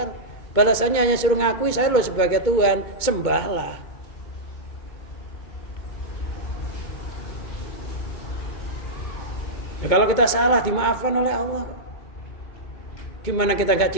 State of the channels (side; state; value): right; late; 2.2 ms